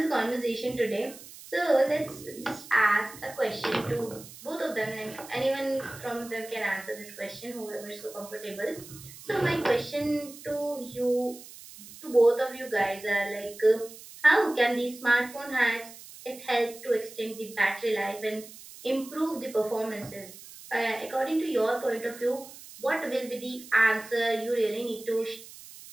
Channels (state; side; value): noise; right; hiss, 17 dB below the sound